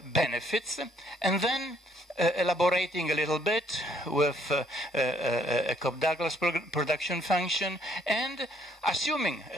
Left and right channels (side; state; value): both; normal; correlation 0.66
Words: benefits, and then elaborating a little bit with a Cobb-Douglas production function, and assuming